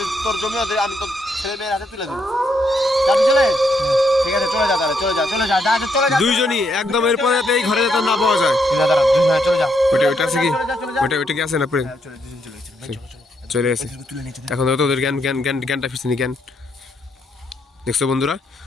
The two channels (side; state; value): both; normal; correlation 0.75